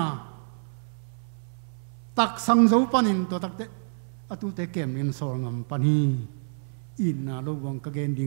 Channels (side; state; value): left; silent; 60 dB below the other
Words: tak sang zo panin to tak te a tu te kem in sor ngam pani in na lo wang ka gen